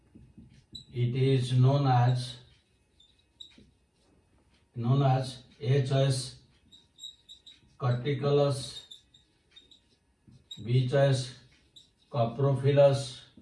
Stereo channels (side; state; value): both; identical; correlation 1.00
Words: it is known as A choice Corticolus, B choice Coprophilus,